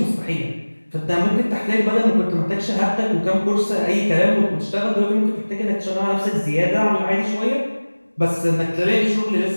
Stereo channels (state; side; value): inverted; both; correlation -1.00